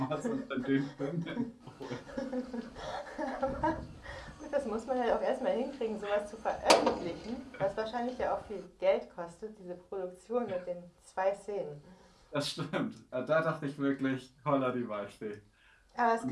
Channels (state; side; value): identical; both; correlation 1.00